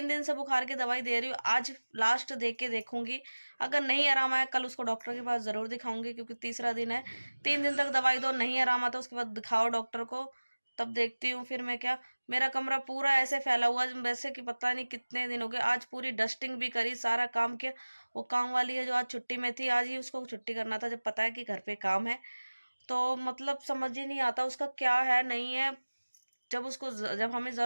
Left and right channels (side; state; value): both; inverted; correlation -1.00